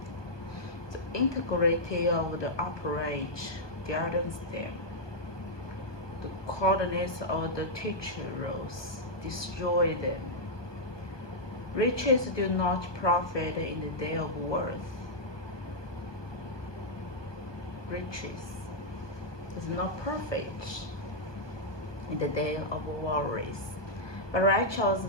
The integrity of the upright guidance them. The coldness of the teachers destroy them. Riches do not profit in the day of worth. Riches is not perfect in the day of worries, but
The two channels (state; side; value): late; right; 1.2 ms